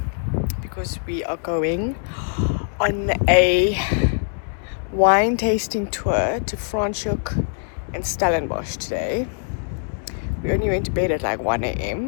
because we are going on a wine tasting tour to Franschhoek and Stellenbosch today. We only went to bed at like 1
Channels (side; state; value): right; silent; digital silence